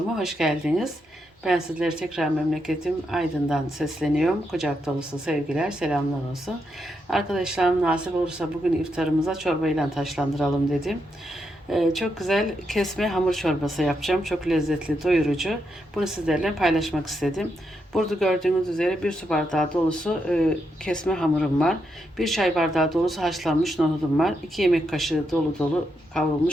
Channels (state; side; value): normal; both; correlation 0.82